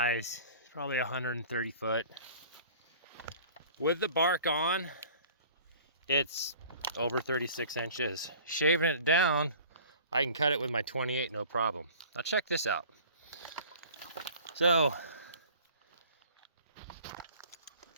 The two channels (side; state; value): both; inverted; correlation -0.47